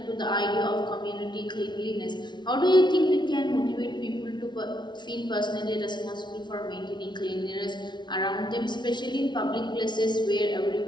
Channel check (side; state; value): right; late; 0.21 ms